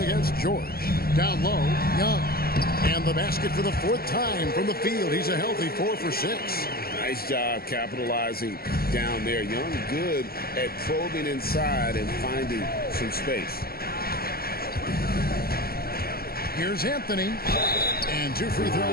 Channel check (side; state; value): right; late; 0.44 ms